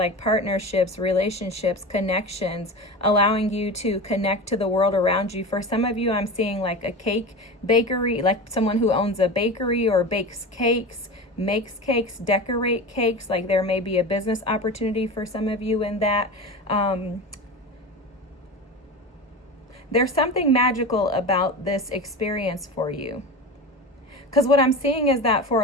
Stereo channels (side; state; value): both; normal; correlation 0.28